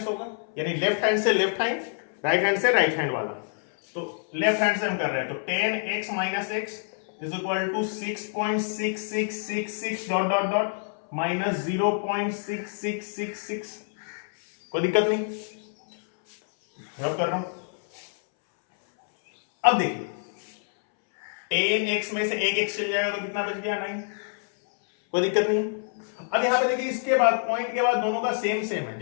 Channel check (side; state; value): right; silent; 60 dB below the other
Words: होगा, यानी लेफ्ट हैंड से लेफ्ट हैंड, राइट हैंड से राइट हैंड वाला। तो लेफ्ट हैंड से हम कर रहे हैं, तो 10x minus x is equal to 6.6666 dot dot dot minus 0.6666। कोई दिक्कत नहीं, रब कर रहा हूं। अब देखिए 10x में से एक x चल जाएगा तो कितना बच गया, 9। कोई दिक्कत नहीं। अब यहां पे देखिए इसके बाद पॉइंट के बाद दोनों का सेम सेम है,